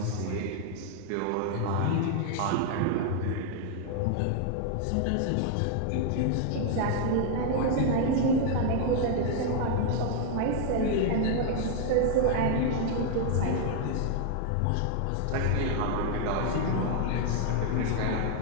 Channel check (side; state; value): both; different; correlation 0.00